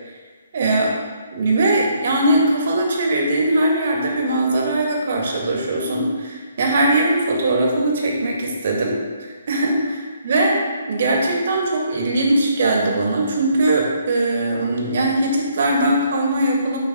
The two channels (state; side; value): inverted; both; correlation -0.69